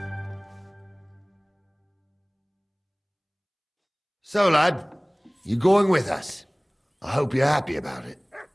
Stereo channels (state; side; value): identical; both; correlation 1.00